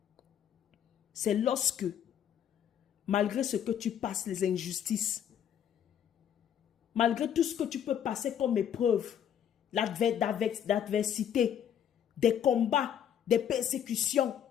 c'est lorsque, malgré ce que tu passes, les injustices, malgré tout ce que tu peux passer comme épreuve, l'adversité, des combats, des persécutions,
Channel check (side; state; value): right; quieter; 9.3 dB